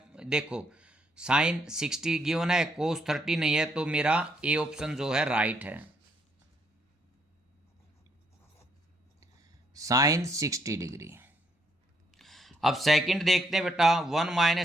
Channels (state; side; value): normal; both; correlation 0.72